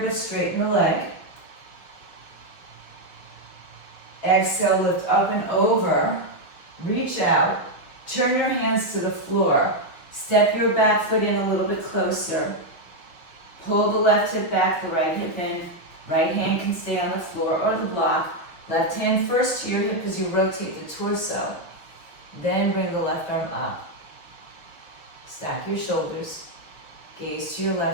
but straighten the leg. Exhale, lift up and over. Reach out. Turn your hands to the floor. Step your back foot in a little bit closer. Pull the left hip back, the right hip in. Right hand can stay on the floor or the block. Left hand first to your hip as you rotate the torso. Then bring the left arm up. Stack your shoulders. Gaze to your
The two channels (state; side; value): late; right; 6.1 ms